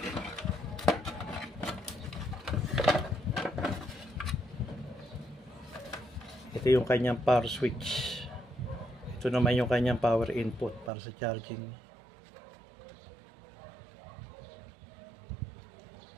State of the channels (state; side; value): drops out; left; at 10.9 s